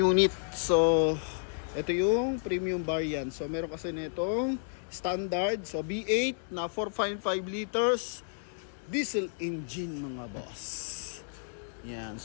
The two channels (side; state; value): right; silent; 57 dB below the other